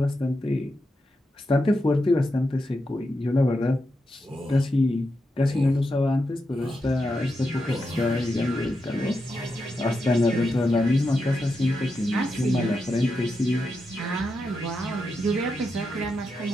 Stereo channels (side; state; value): both; normal; correlation 0.86